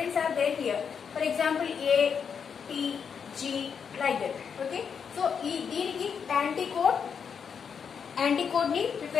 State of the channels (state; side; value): quieter; right; 6.8 dB